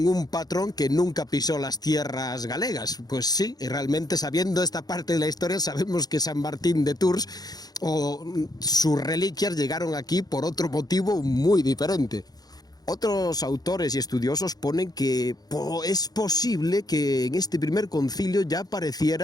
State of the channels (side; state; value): right; late; 0.19 ms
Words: un patrón que nunca pisó las tierras galegas. Pues sí, y realmente, sabiendo esta parte de la historia, sabemos que San Martín de Tours o sus reliquias llegaron aquí por otro motivo muy diferente. Otros autores y estudiosos ponen que es posible que en este primer concilio ya